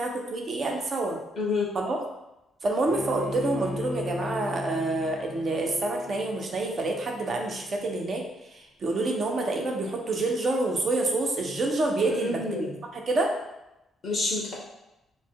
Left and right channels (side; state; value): both; normal; correlation 0.73